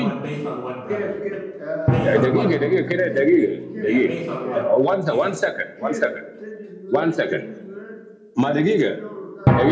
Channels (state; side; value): identical; both; correlation 1.00